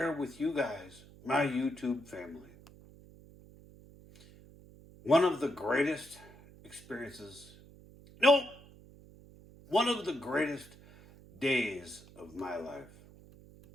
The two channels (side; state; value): right; noise; hum, 22 dB below the sound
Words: with you guys, my YouTube family, one of the greatest experiences, no, one of the greatest days of my life.